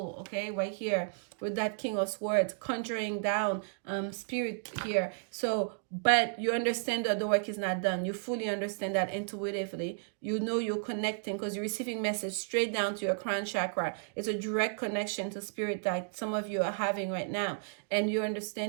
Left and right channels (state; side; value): silent; left; digital silence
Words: okay, right here with that King of Swords conjuring down spirit here. So but you understand that the work is not done. You fully understand that intuitively. You know you're connecting because you're receiving message straight down to your crown chakra. It's a direct connection to spirit that some of you are having right now, and you're